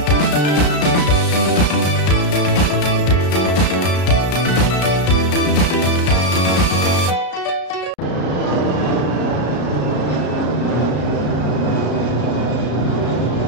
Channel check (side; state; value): right; late; 33 ms